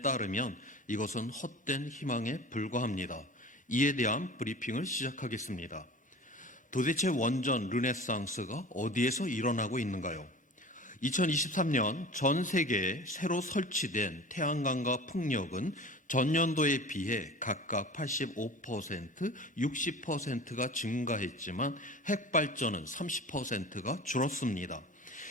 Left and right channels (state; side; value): normal; both; correlation 0.38